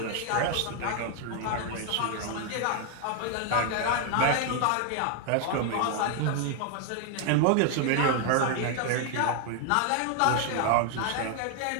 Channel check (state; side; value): different; both; correlation 0.00